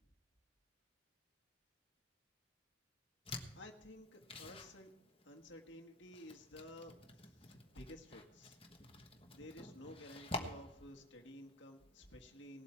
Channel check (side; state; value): both; normal; correlation 0.29